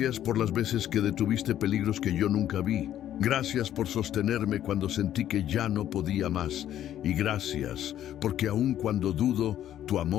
por las veces que detuviste peligros que yo nunca vi. Gracias por sostenerme cuando sentí que ya no podía más. Y gracias porque aun cuando dudo, tu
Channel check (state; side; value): quieter; right; 11.4 dB